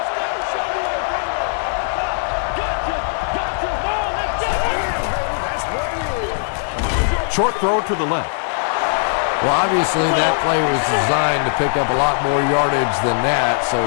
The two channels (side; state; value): right; silent; 64 dB below the other